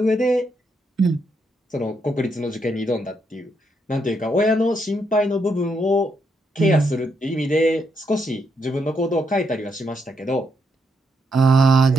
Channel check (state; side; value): normal; both; correlation 0.78